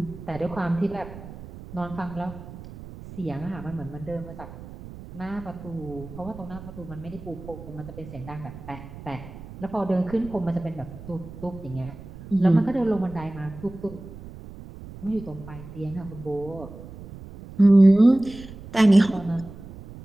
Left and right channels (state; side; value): noise; right; rumble, 15 dB below the sound